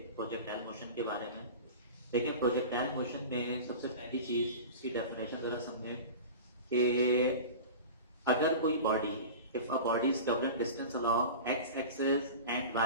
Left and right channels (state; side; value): inverted; both; correlation -0.33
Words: प्रोजेक्टाइल मोशन के बारे में। देखिए, प्रोजेक्टाइल मोशन में सबसे पहली चीज इसकी डेफिनेशन जरा समझें कि अगर कोई body, if a body is covering distance along X axis and